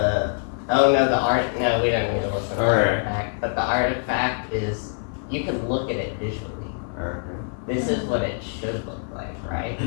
art. No, we don't need to listen to the Alright. artifact. But the artifact is you can look at it visually. Okay. This is what it should look like, right?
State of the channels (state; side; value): silent; right; 62 dB below the other